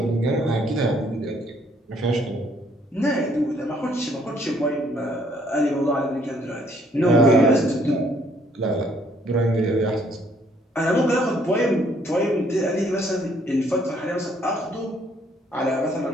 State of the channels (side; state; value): both; normal; correlation 0.65